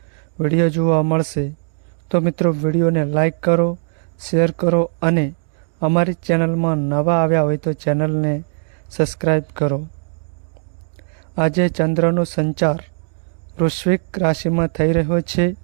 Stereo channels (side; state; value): left; silent; digital silence